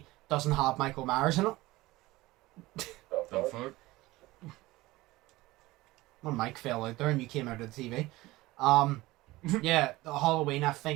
Doesn't have Michael Myers in it. The fuck? When Mike fell out there and you came out of the TV. Yeah, the Halloween, I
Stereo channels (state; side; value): quieter; left; 19.2 dB